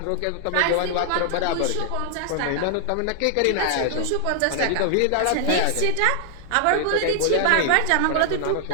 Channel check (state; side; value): different; both; correlation 0.00